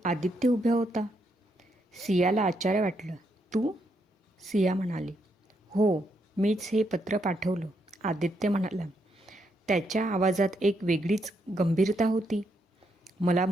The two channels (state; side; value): normal; both; correlation 0.78